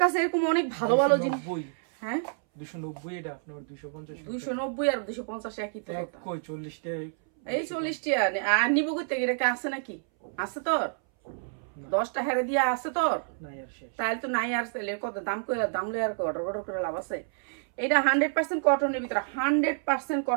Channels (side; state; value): left; silent; 59 dB below the other